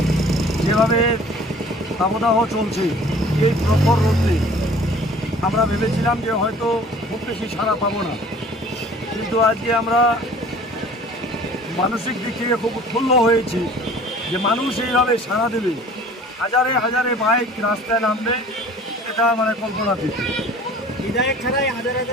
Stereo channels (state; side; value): normal; both; correlation 0.48